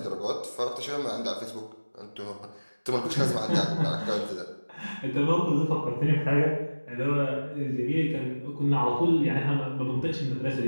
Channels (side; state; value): both; inverted; correlation -1.00